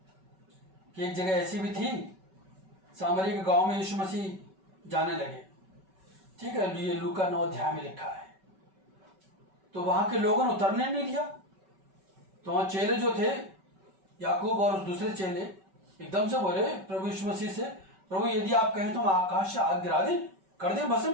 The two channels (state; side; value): late; left; 5.3 ms